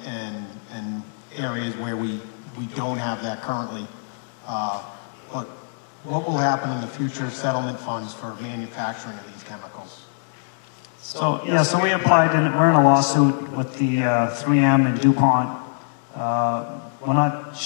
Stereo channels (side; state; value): right; silent; digital silence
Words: and areas where we don't have that currently. But what will happen in the future settlement funds for manufacturing of these chemicals? So we applied, and we're in a lawsuit with the 3M and DuPont. We're not